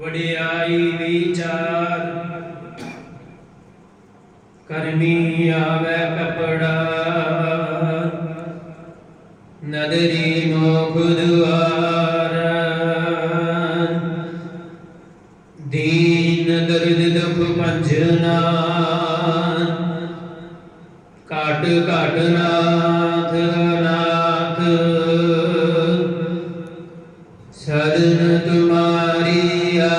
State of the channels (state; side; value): identical; both; correlation 1.00